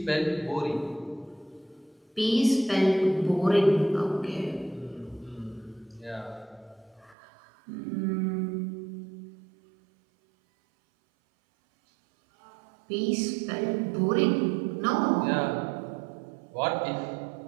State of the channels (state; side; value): drops out; left; at 7.2 s